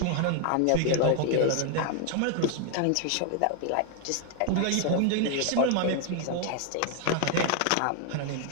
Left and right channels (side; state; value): both; different; correlation 0.00